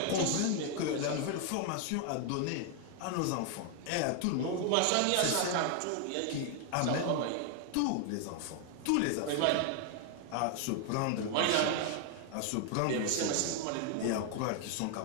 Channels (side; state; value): both; different; correlation 0.00